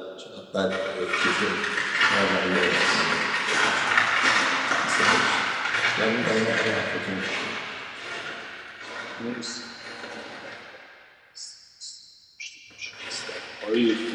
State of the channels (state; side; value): identical; both; correlation 1.00